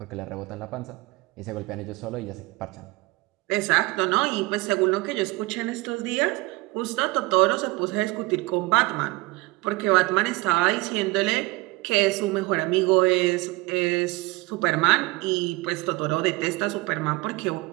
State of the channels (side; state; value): left; quieter; 22.5 dB